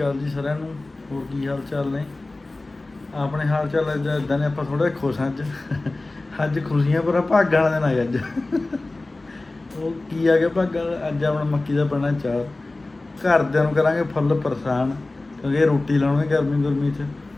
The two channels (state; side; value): quieter; right; 3.0 dB